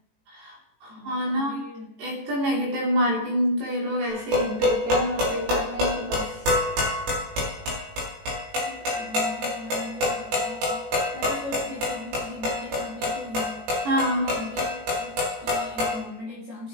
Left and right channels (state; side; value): late; left; 18 ms